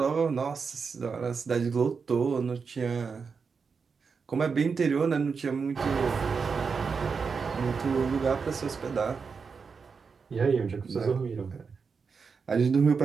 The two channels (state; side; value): quieter; left; 5.4 dB